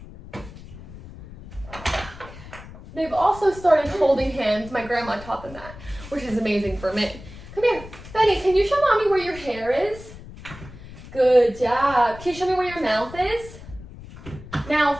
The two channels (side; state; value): left; noise; rumble, 16 dB below the sound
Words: They've also started holding hands. My grandma taught them that, which is amazing for me. Come here. Benny, can you show mommy where your hair is? Good job. Can you show me where your mouth is?